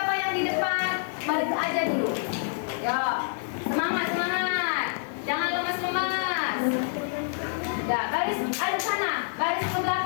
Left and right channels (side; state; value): right; silent; digital silence